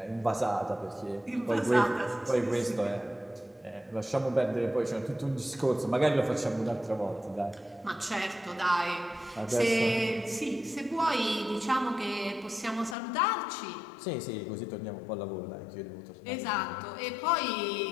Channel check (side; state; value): right; drops out; at 13.0 s